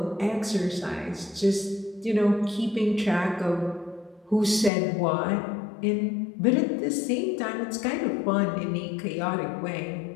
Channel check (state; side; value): drops out; right; at 4.7 s